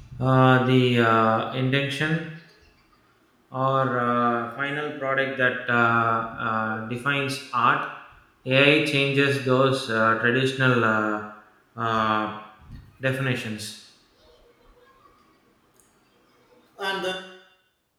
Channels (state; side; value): identical; both; correlation 1.00